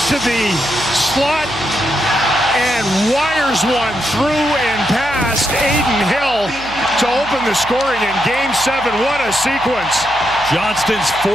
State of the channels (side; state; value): right; noise; hum, 17 dB below the sound